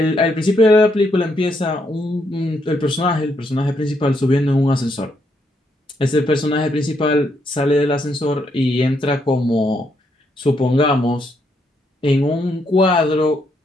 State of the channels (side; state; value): both; normal; correlation 0.76